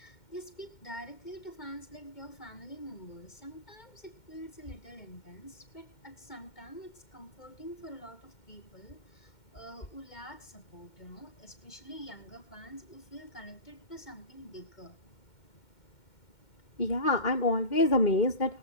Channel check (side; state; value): right; late; 2.1 ms